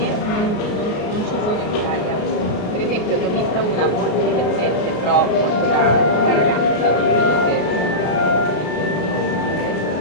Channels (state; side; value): late; right; 33 ms